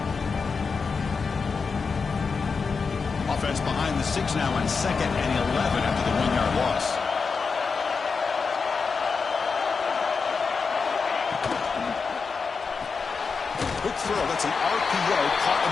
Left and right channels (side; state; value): right; quieter; 5.1 dB